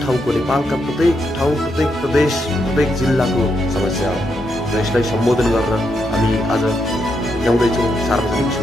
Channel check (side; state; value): both; normal; correlation 0.81